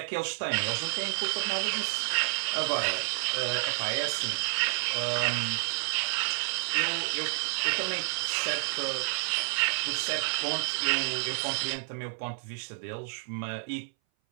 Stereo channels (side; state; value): left; silent; 58 dB below the other